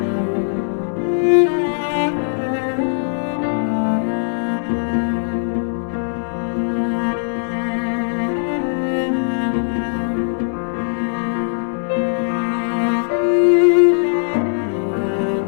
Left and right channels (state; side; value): silent; right; 66 dB below the other